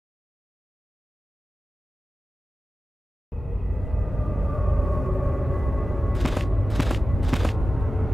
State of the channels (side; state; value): both; normal; correlation 0.95